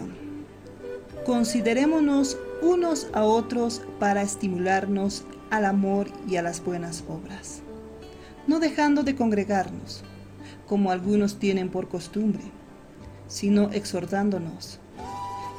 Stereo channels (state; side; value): identical; both; correlation 1.00